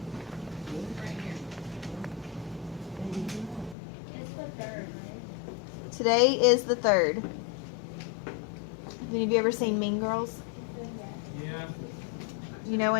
Today is the 3rd. Have any of you ever seen Mean Girls? Yeah. You know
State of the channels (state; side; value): drops out; right; at 3.8 s